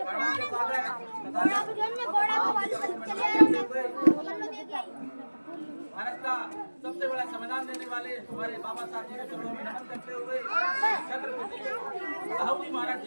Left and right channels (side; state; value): both; inverted; correlation -1.00